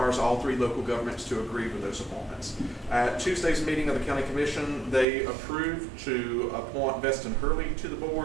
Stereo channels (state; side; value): drops out; left; at 5.1 s